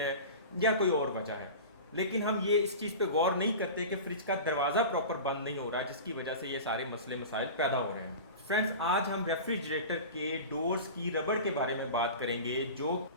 या कोई और वजह है। लेकिन हम ये इस चीज़ पे गौर नहीं करते कि फ्रिज का दरवाज़ा प्रॉपर बंद नहीं हो रहा, जिसकी वजह से ये सारे मसले मसाइल पैदा हो रहे हैं। फ्रेंड्स, आज हम रेफ्रिजरेटर के डोर्स की रबड़ के बारे में बात करेंगे, जो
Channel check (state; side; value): inverted; both; correlation -0.33